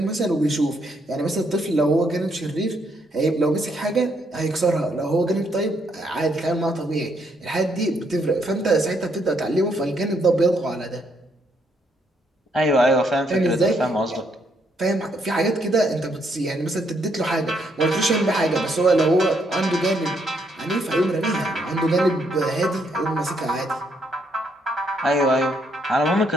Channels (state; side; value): normal; both; correlation 0.73